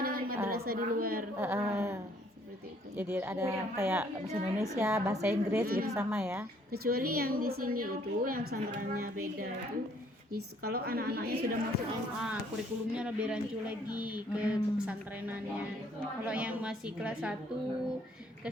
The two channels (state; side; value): normal; both; correlation 0.63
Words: dengan madrasah di luar. Seperti itu. Jadi ada kayak bahasa Indonesia, bahasa Inggris gitu sama ya? Kecuali yang di sini itu yang pesantrennya beda itu. Kalau anak-anaknya sudah masuk SMA, kurikulumnya lebih rancu lagi ke pesantrenannya. Kalau yang masih kelas 1,